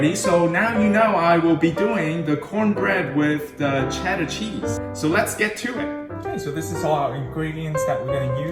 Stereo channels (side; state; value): both; identical; correlation 1.00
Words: so now you know I will be doing the cornbread with the cheddar cheese. So let's get to it. Okay, so this is all our ingredients that we're going to